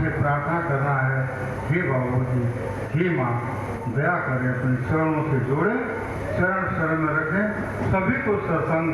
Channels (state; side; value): identical; both; correlation 1.00